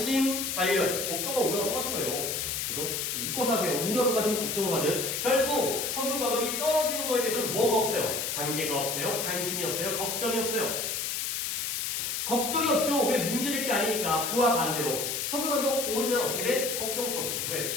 관련. 걱정과 우려가 똑같은 거예요. 그죠? 묶어서 하세요. 우려를 가든 걱정을 가든. 결국 석유 가격이 떨어지는 거에 대해서는 뭐가 없어요? 관계가 없어요. 관심이 없어요. 걱정이 없어요. 걱정이 없죠. 왜? 문제될 게 아니니까. 그와 반대로 석유 가격 오르면 어떻게 돼? 걱정스럽죠. 왜?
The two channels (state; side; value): noise; left; hiss, 1 dB below the sound